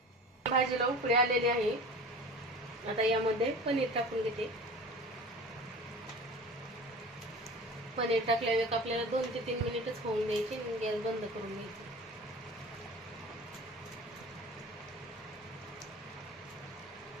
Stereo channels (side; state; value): both; normal; correlation 0.38